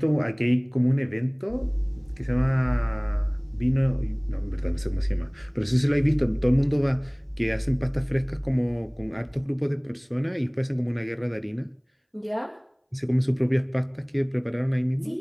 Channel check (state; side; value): identical; both; correlation 1.00